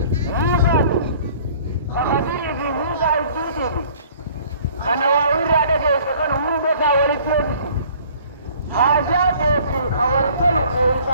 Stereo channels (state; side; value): inverted; both; correlation -0.53